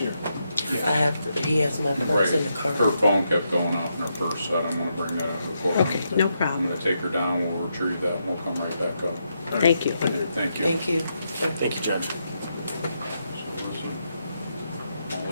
I have to, he has my purse in the car. Her phone kept going off in her purse, so I don't wanna bring that into the court. Okay, no I'm problem. gonna take her down, we'll retrieve that, and we'll come right back up. Thank you. Thank you. Thank you. Thank you, Judge. I'll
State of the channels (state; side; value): inverted; both; correlation -0.82